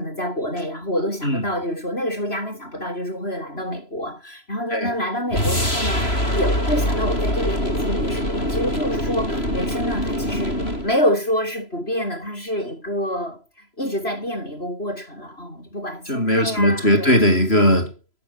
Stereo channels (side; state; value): right; late; 3.0 ms